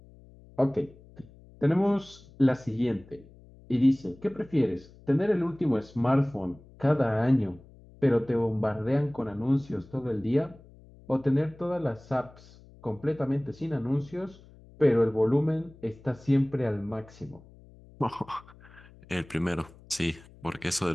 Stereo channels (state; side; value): noise; left; hum, 23 dB below the sound